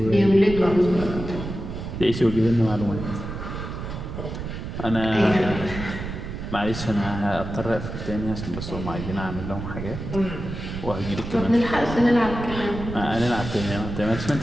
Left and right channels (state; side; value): noise; right; rumble, 7 dB below the sound